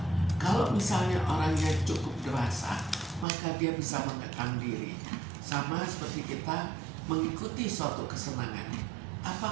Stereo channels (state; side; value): drops out; left; at 3.2 s